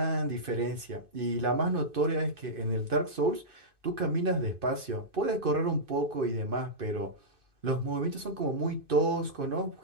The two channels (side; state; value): left; late; 2.5 ms